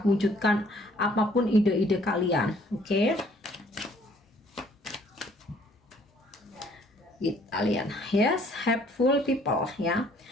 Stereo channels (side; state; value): both; normal; correlation 0.61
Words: wujudkan apapun ide-ide kalian. Oke. Kita lihat, yes, helpful people ya.